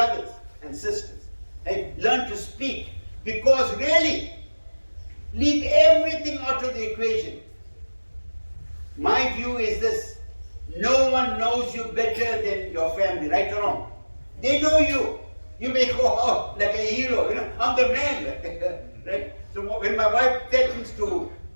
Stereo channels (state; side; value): inverted; both; correlation -1.00